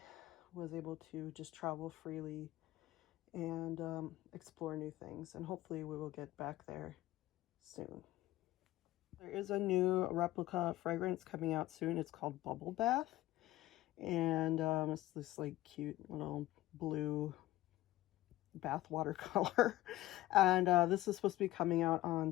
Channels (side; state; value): right; quieter; 16.2 dB